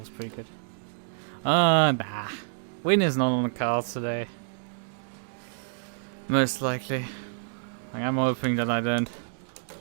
pretty good. Nah. Win is not on the cards today. Most likely. Like, I'm hoping that I don't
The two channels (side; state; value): left; silent; digital silence